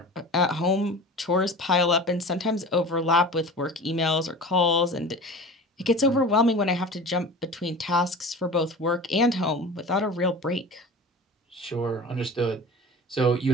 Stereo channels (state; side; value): normal; both; correlation 0.36